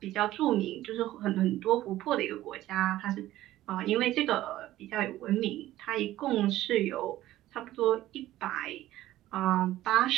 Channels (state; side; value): quieter; left; 14.8 dB